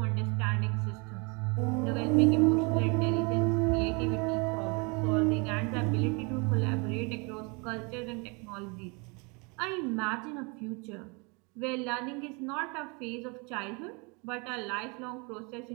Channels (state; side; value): quieter; left; 31.1 dB